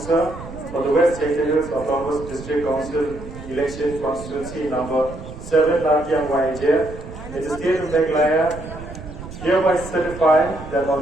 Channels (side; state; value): right; noise; rumble, 13 dB below the sound